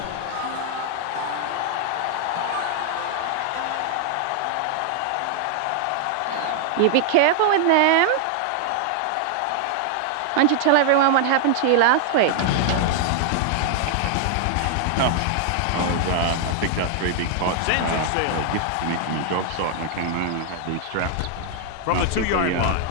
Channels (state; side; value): different; both; correlation 0.00